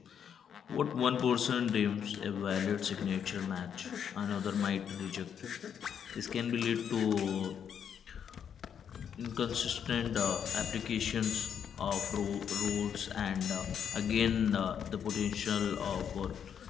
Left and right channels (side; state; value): right; quieter; 8.1 dB